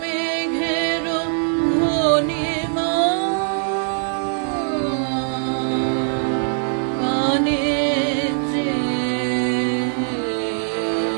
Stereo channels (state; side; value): silent; left; digital silence